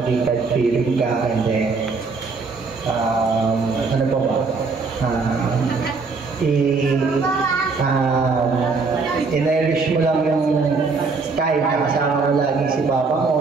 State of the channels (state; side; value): quieter; left; 4.4 dB